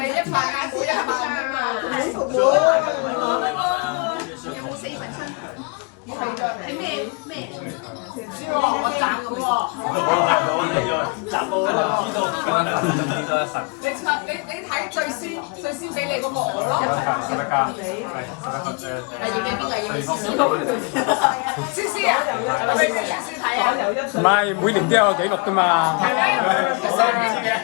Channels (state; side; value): quieter; right; 32.3 dB